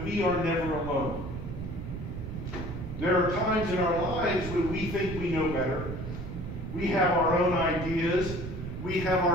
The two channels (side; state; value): right; noise; rumble, 7 dB below the sound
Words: we are never alone. There are times in our lives when we think we know better. We have our own ideas, we have